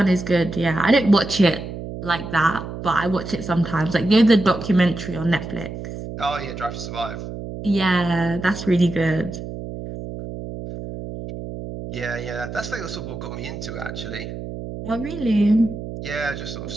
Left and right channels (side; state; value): right; noise; hum, 9 dB below the sound